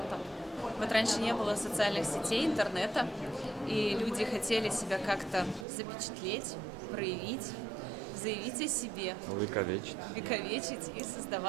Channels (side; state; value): left; drops out; at 5.7 s